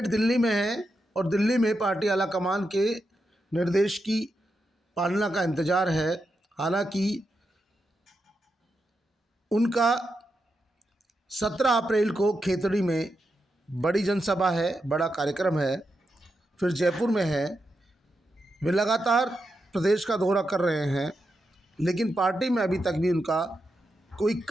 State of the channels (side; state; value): both; normal; correlation 0.86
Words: दिल्ली में हैं और दिल्ली में पार्टी आलाकमान के निर्देश की पालना का इंतजार है। हालांकि उनका 17 अप्रैल को खेतड़ी में बड़ी जनसभा है, बड़ा कार्यक्रम है, फिर जयपुर में है। वे लगातार प्रदेश का दौरा कर रहे हैं, लेकिन पार्टी में अभी तक भी उनका कोई